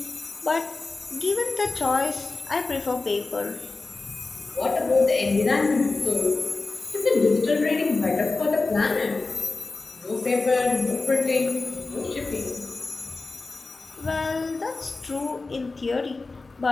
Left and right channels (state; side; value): quieter; right; 3.7 dB